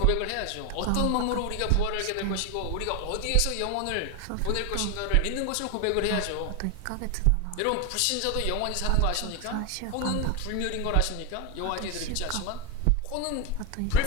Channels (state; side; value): different; both; correlation 0.01